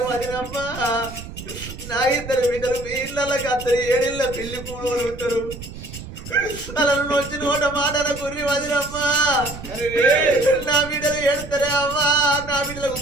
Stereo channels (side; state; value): right; noise; rumble, 12 dB below the sound